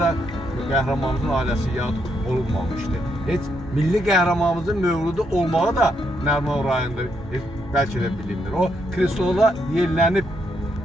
qəhrəmanımızın ailəsi yad olunmamışdı. Heç milli qəhrəmanımızın mövludu olmağı da Nəriman rayonunda bəlkə də bilinir. O krestola yerlənib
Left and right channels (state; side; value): normal; both; correlation 0.77